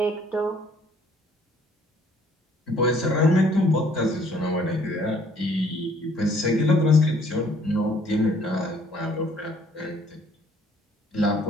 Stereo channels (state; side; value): normal; both; correlation 0.60